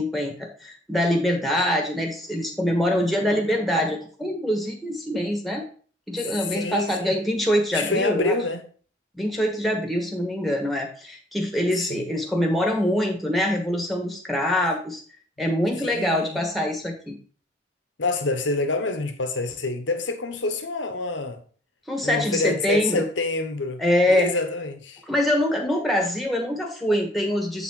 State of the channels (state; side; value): normal; both; correlation 0.57